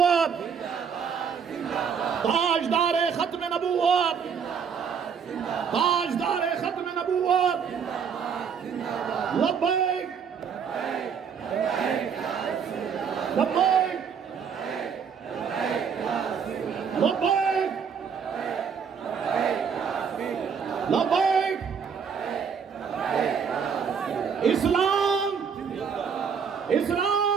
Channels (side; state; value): left; quieter; 6.8 dB